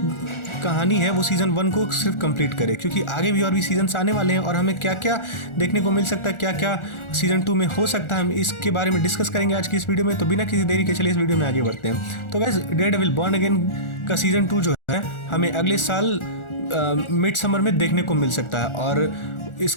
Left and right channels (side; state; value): right; late; 1.4 ms